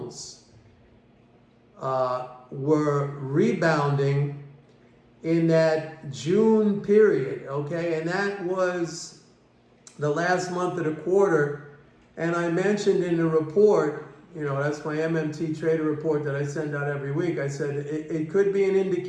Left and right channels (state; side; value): identical; both; correlation 1.00